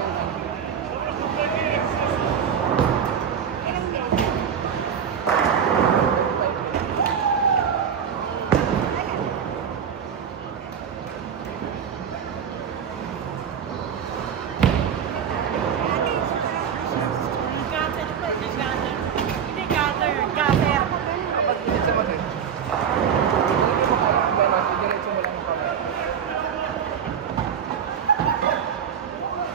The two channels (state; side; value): quieter; left; 7.8 dB